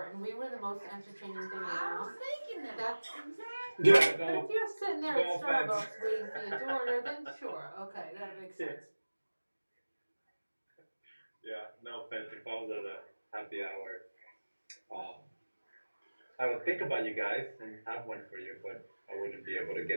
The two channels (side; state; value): both; inverted; correlation -1.00